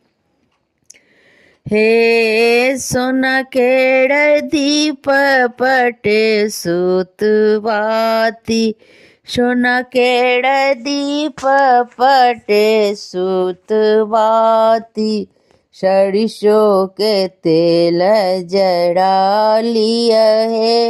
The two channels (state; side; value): identical; both; correlation 1.00